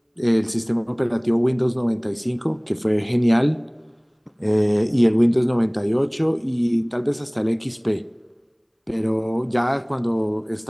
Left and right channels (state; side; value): identical; both; correlation 1.00